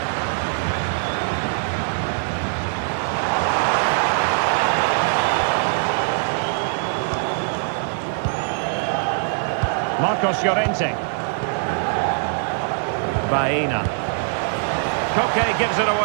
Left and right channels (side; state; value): left; silent; 55 dB below the other